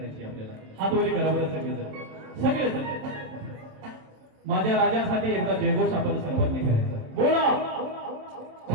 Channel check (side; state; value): left; late; 27 ms